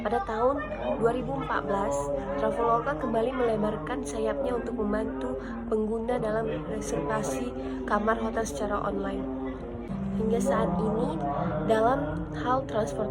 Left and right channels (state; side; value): identical; both; correlation 1.00